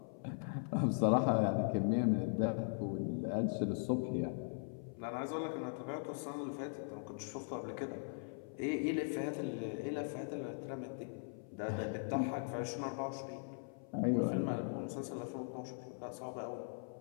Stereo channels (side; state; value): right; silent; 51 dB below the other